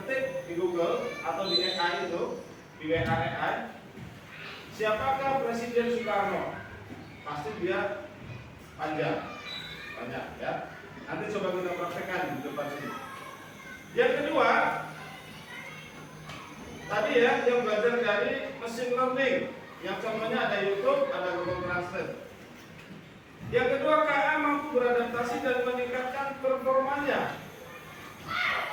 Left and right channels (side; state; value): both; identical; correlation 1.00